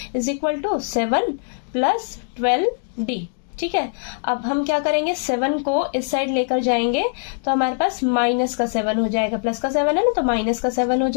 is equal to 7 plus 12d। ठीक है, अब हम क्या करेंगे, 7 को इस साइड लेकर जाएंगे तो हमारे पास माइनस का 7 हो जाएगा, प्लस का 7 है ना, तो माइनस का 7 हो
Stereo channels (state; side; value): silent; right; digital silence